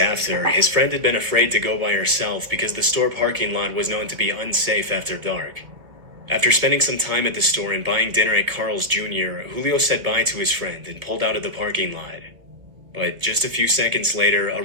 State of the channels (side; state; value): left; late; 2.6 ms